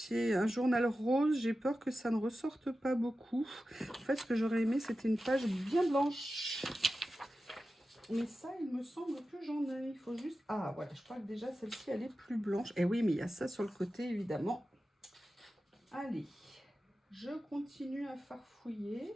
un journal rose, j'ai peur que ça ne ressorte pas beaucoup. En fait, ce que j'aurais aimé, c'était une page bien blanche. Mais ça, il me semble que j'en ai. Il faut juste... Ah, voilà, je crois que déjà, celle-ci, elle est plus blanche. Et oui, mais il y a ça sur le côté, évidemment. Allez, je continue à farfouiller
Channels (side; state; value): both; normal; correlation 0.93